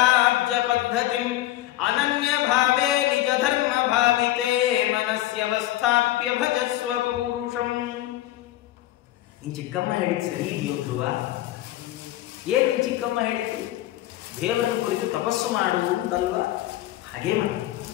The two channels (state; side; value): quieter; right; 15.1 dB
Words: ಪದ್ಧತಿಂ ಅನನ್ಯ ಭಾವೇ ನಿಜ ಧರ್ಮ ಭಾವಿತೆ ಮನಸ್ಯವಸ್ಥಾಪ್ಯ ಭಜಸ್ವ ಪೂರುಷಂ. ನಿನ್ ಚಿಕ್ಕಮ್ಮ ಹೇಳಿದ್ ಸರಿ ಇದೆಯೋ ಧ್ರುವ? ಏನ್ ನಿನ್ ಚಿಕ್ಕಮ್ಮ ಹೇಳಿದ್ದು? ದೇವರನ್ನು ಕುರಿತು ತಪಸ್ಸು ಮಾಡು ಅಂತಲ್ವಾ? ಹಾಗೇ ಮಾಡಿ.